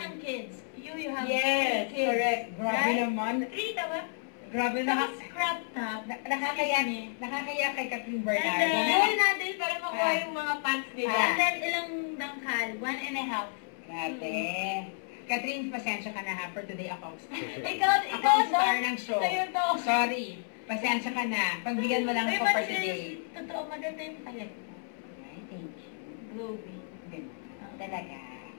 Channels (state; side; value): silent; right; 57 dB below the other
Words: kids. You have Yes, kids. correct. Grabe Right? naman. Rita ba? Grabe na. Tapos crop top. Nakakaya kay Catherine And Bernardo. then, natin para makuha yung mga pants nila. Ah. And then, ilang dangkal? 1.5. Grabe. Catherine, pasensya ka na ha for today ako. Ikaw, Ako ang star ng show. Sa'yo to. Sorry. Pasensya ka na. Pagbigyan mo lang ako for today. Totoo, maganda yung palit mo. Ay, thank you. Glowy. Ganun. Talaga.